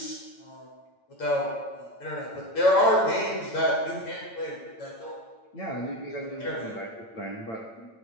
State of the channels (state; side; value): late; right; 8.9 ms